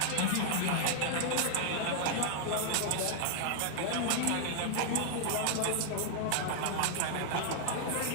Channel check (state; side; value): different; both; correlation -0.01